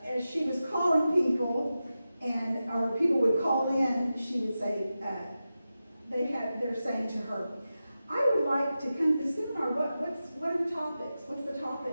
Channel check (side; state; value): both; inverted; correlation -0.92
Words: as she was calling people, or people would call in, she would say, they're saying to her, I would like to come to the seminar. What are the topics? What's the